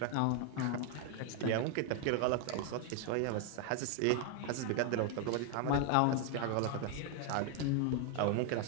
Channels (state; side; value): different; both; correlation 0.00